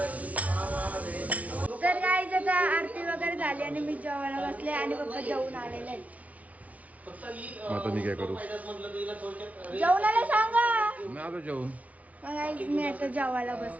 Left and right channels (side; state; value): left; late; 0.068 ms